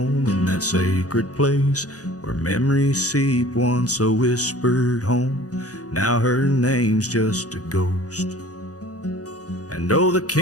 in that sacred place where memories seep, once a whispered home. Now her name's just a ghost. And oh, the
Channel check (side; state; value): right; late; 0.67 ms